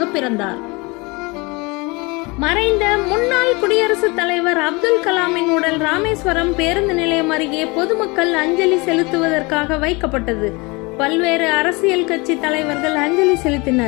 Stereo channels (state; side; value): quieter; right; 26.5 dB